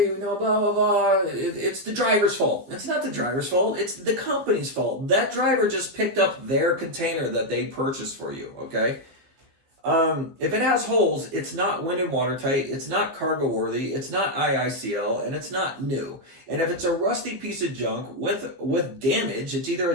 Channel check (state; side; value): late; left; 15 ms